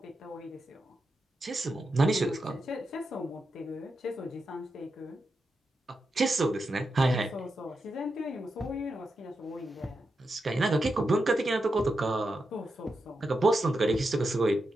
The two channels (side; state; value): both; normal; correlation 0.87